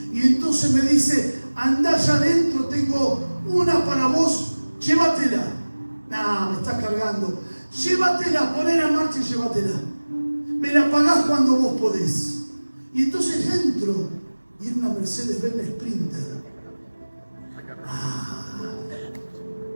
Y entonces me dice, andá allá adentro, tengo una para vos, llévatela. Nah, me estás cargando. Llévatela, poné en marcha y llévatela. Me la pagás cuando vos podés. Y entonces entro y era una Mercedes-Benz Sprinter.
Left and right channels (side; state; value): both; inverted; correlation -1.00